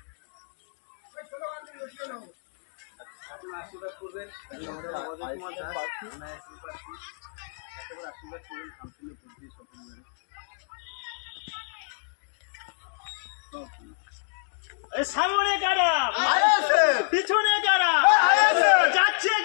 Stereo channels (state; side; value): silent; right; digital silence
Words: আশীর্বাদ করবেন আশীর্বাদ করবেন কাউন্সিলে বুদ্ধি সফল সামনে কারা পিছনে কারা যাচ্ছে